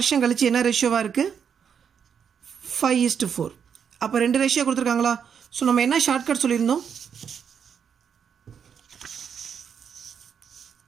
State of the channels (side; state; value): left; quieter; 7.4 dB